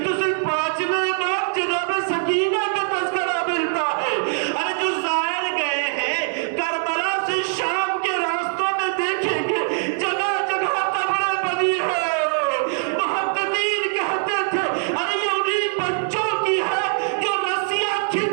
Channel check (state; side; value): silent; left; 64 dB below the other